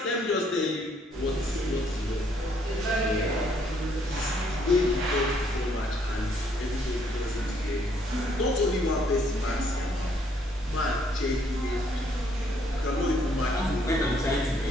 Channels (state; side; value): normal; both; correlation 0.68